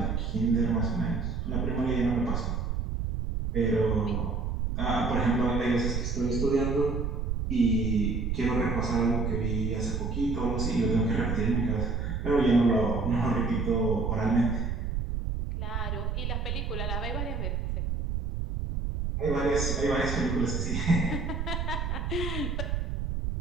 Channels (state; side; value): noise; right; rumble, 1 dB below the sound